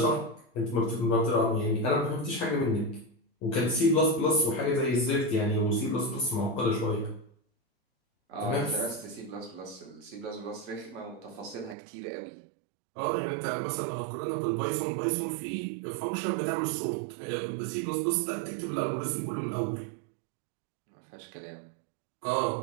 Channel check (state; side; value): drops out; left; at 11.8 s